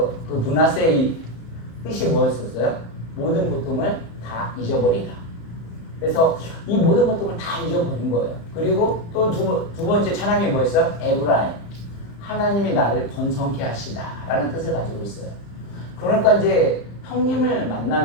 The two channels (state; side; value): late; right; 35 ms